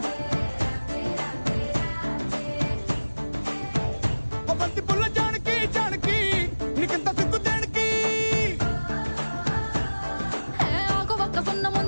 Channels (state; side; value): inverted; both; correlation -1.00